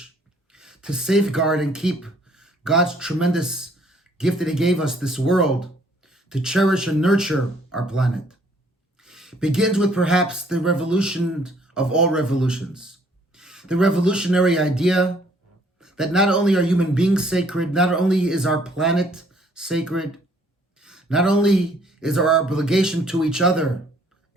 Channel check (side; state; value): both; normal; correlation 0.62